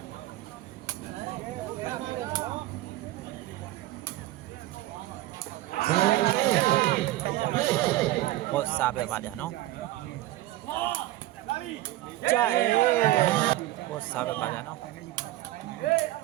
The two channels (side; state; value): left; quieter; 16.3 dB